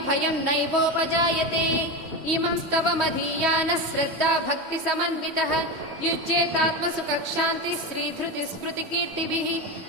भयम् नैवोपजायते इमम् स्तवमधीयानः श्रद्धा भक्तिसमन्वितः युज्येतात्मसुखशान्तिः श्रीधृतिस्मृतिकीर्तिभिः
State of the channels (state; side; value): late; left; 3.1 ms